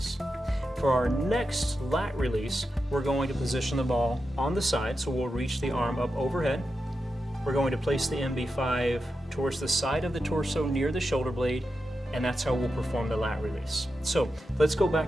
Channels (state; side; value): normal; both; correlation 0.89